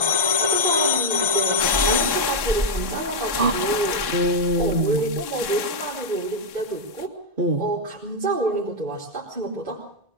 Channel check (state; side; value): late; left; 1.2 ms